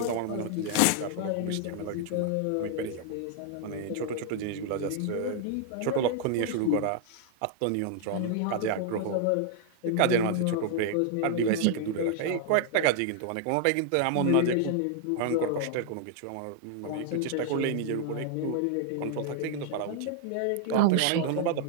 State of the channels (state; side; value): different; both; correlation -0.01